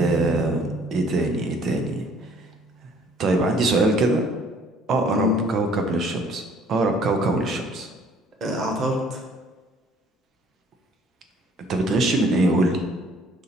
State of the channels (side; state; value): both; normal; correlation 0.58